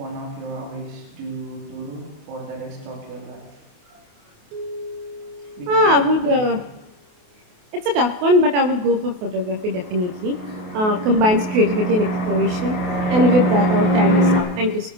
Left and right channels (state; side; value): late; left; 28 ms